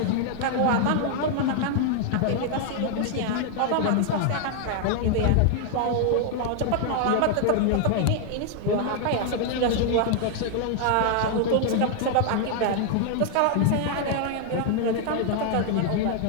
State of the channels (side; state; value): both; different; correlation 0.00